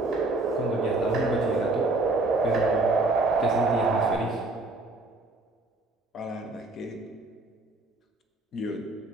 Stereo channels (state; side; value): quieter; left; 3.1 dB